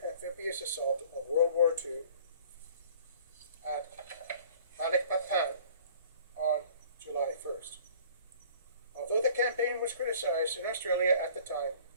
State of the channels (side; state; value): both; inverted; correlation -0.50